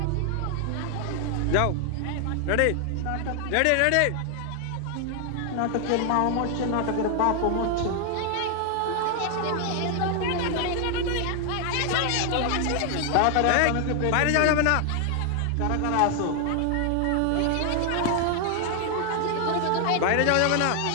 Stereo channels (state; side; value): different; both; correlation 0.00